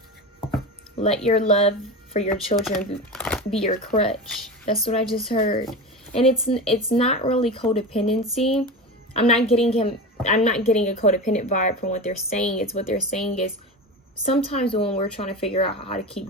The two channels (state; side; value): normal; both; correlation 0.26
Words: Let your love for your children be your crutch. That's what I just heard. And it's not really codependency. I'm not getting a codependent vibe from what they're saying. It's what they're saying is sometimes when we're trying to figure out how to